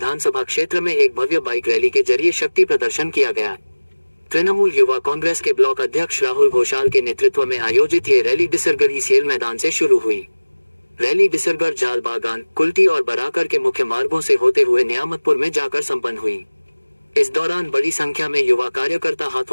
क्षेत्र में एक भव्य बाइक रैली के जरिए शक्ति प्रदर्शन किया गया। तृणमूल युवा कांग्रेस के ब्लॉक अध्यक्ष राहुल घोषाल के नेतृत्व में आयोजित ये रैली डिसरगढ़ ईसीएल मैदान से शुरू हुई। रैली डिसरगढ़, जाल बागान, कुल्टी और बराकर के मुख्य मार्गों से होते हुए नियामतपुर में जाकर संपन्न हुई। इस दौरान बड़ी संख्या में युवा कार्यकर्ता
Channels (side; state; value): both; inverted; correlation -1.00